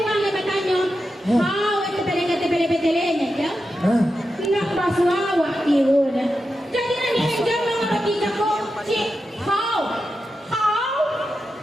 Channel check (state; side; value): normal; both; correlation 0.89